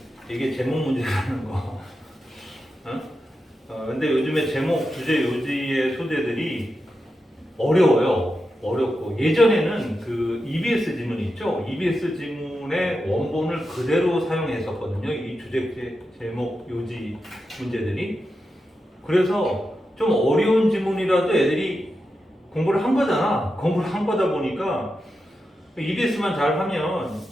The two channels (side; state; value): both; normal; correlation 0.89